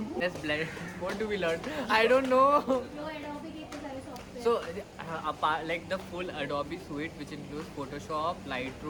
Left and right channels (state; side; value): identical; both; correlation 1.00